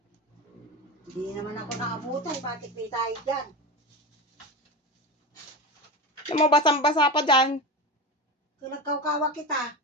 Hindi naman ako nakabutan. Bakit may tayo dyan? Alam mo, basang-basa pa dyan. Kung nagkaukawa kita.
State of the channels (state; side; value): normal; both; correlation 0.23